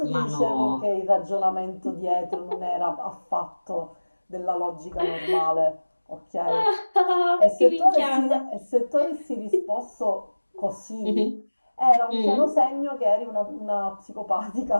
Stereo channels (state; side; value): inverted; both; correlation -1.00